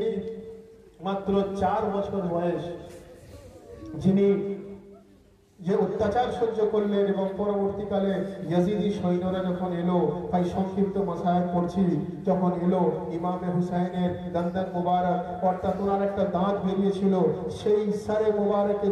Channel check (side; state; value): both; identical; correlation 1.00